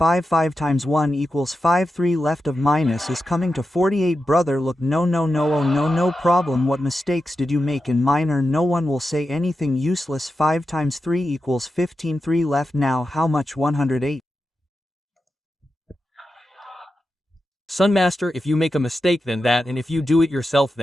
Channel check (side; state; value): both; normal; correlation 0.90